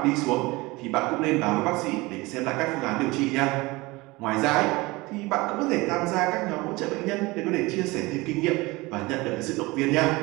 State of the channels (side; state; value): left; quieter; 22.4 dB